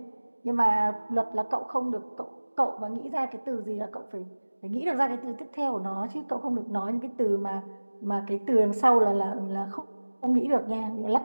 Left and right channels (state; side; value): inverted; both; correlation -1.00